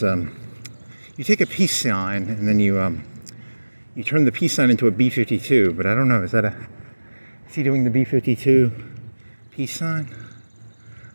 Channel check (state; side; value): inverted; both; correlation -1.00